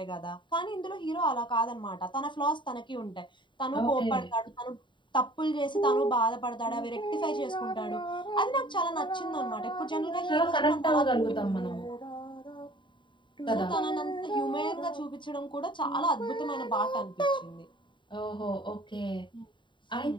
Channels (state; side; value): late; right; 0.23 ms